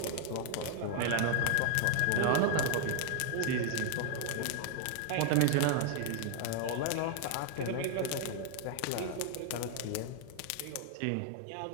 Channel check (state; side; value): different; both; correlation 0.00